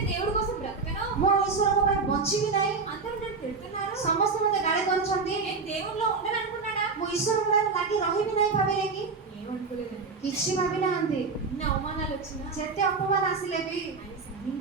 దేవుడి కోసం బ్రతకను, ମୁଁ ଈଶ୍ୱରଙ୍କ ପାଇଁ ବଞ୍ଚିବି ନାହିଁ, అందరూ నన్ను తిడుతున్నారు, ସମସ୍ତେ ମତେ ଗାଳି କରୁଛନ୍ତି, నేను దేవుడిలో ఉండను అనుకున్నాడా? ମୁଁ ଈଶ୍ୱରଙ୍କ ପାଇଁ ଲାଗି ରହିବି ନାହିଁ ଭାବିଲେ କି? ఏమనుకోలేదండి. କିଛି ଭାବି ନାହାନ୍ତି। ఇన్ని అవమానాలు వచ్చినా ଯେତେ ଅପମାନ ଆସିଲେ ବି ఆయన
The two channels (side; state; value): left; quieter; 4.5 dB